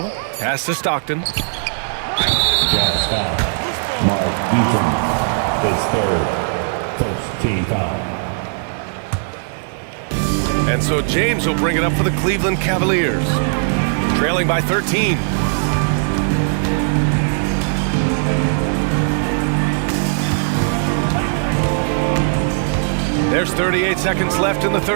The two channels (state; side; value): silent; left; 63 dB below the other